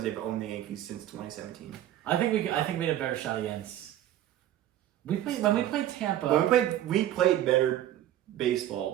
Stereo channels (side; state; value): left; quieter; 12.8 dB